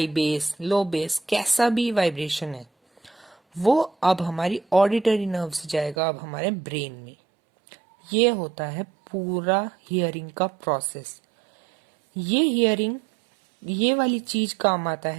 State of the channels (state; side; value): drops out; left; at 6.0 s